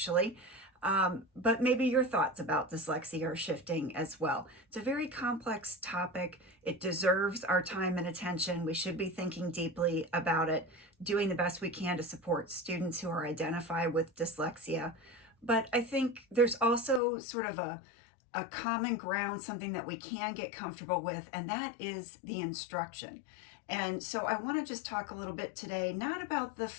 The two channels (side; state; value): right; drops out; at 17.0 s